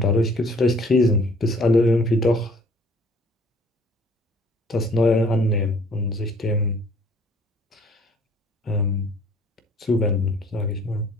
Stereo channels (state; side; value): normal; both; correlation 0.56